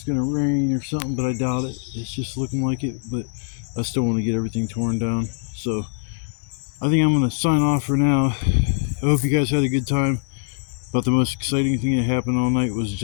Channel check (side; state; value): right; silent; 64 dB below the other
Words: gonna rain or something, but I doubt it. It's just looking like it, but I still want to get everything torn down. So I think I'm gonna sign off for now. I hope you guys had a good time. But the most exciting thing that happened all night was